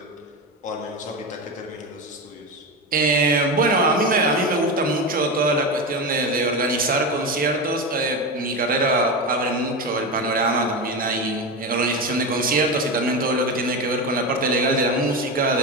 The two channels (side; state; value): both; normal; correlation 0.19